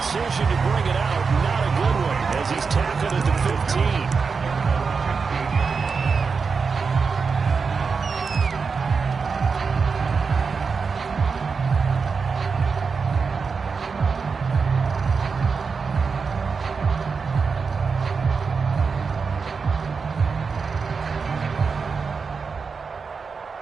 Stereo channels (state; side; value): quieter; left; 5.1 dB